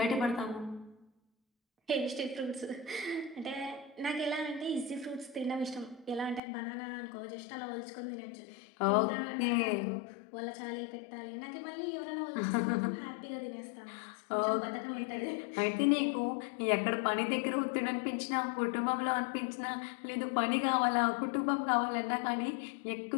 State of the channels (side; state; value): right; drops out; at 6.4 s